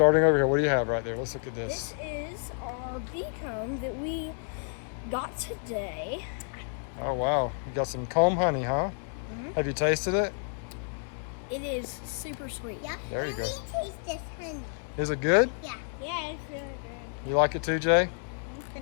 over here, what do you have right there? Let's look at this. This is our bee comb that we got today. Oh, wow. You got some comb honey, huh? Mm-hmm. Have you tasted it? It is super sweet. Yeah. There you go. Taste this honey. Is it good? Yeah. Yeah, it's really good. You like it too, Jay?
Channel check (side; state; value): right; silent; 58 dB below the other